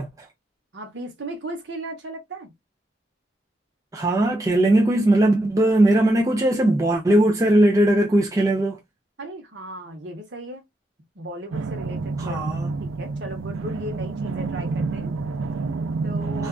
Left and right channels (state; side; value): normal; both; correlation 0.82